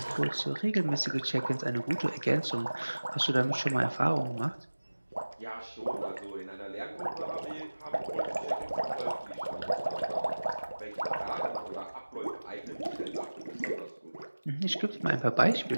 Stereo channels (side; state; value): both; inverted; correlation -1.00